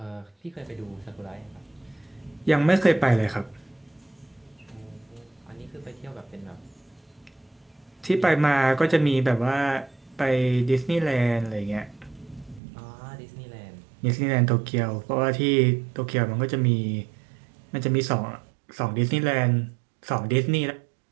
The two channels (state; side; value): drops out; left; at 12.6 s